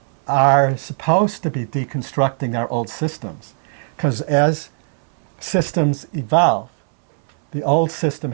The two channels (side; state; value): left; silent; 66 dB below the other